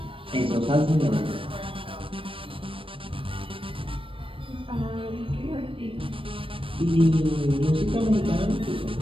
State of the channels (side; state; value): left; late; 0.26 ms